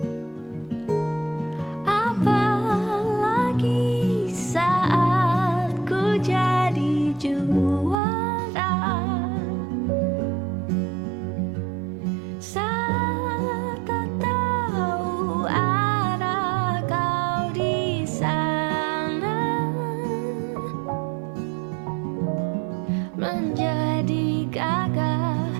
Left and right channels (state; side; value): drops out; left; at 8.0 s